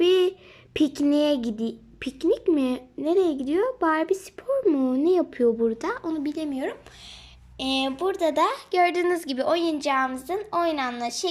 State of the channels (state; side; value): identical; both; correlation 1.00